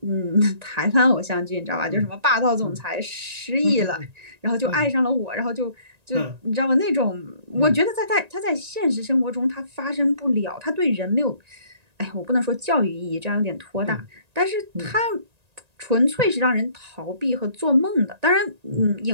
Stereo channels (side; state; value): left; late; 1.9 ms